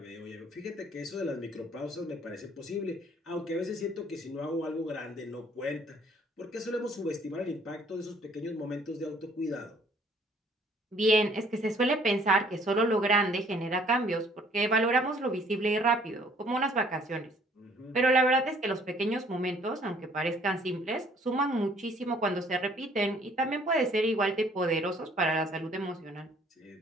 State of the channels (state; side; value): normal; both; correlation 0.60